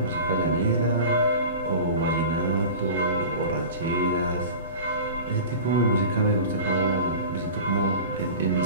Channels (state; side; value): inverted; both; correlation -0.36